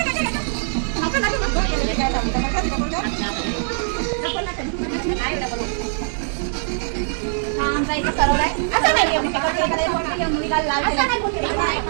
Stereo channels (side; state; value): left; silent; digital silence